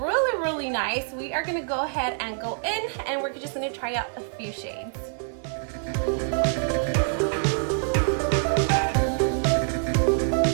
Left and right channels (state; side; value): silent; left; 61 dB below the other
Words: really nice. We are gonna go ahead and go in and we're just gonna try out a few shades.